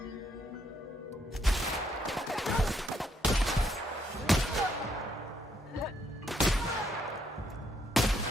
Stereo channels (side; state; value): both; normal; correlation 0.73